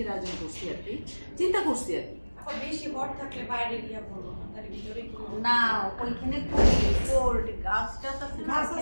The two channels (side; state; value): both; inverted; correlation -1.00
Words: আয়োজন করছি আর কি, চিন্তা করছি আর কি। বেশি ভর থাকলে বাইরে গিয়ে বলবো না, তার ভিতরে কি না ওইখানে কোল্ড গাছটা আছে।